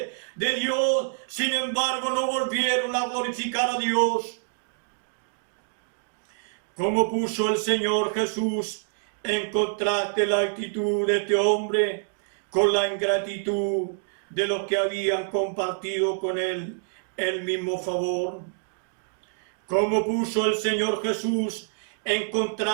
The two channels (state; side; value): silent; left; digital silence